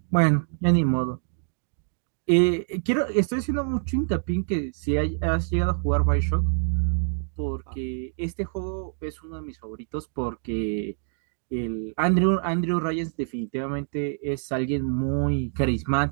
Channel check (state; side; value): silent; left; digital silence